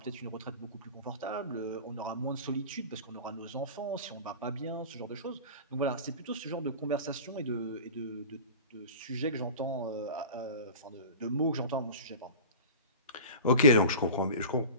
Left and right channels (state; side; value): inverted; both; correlation -0.35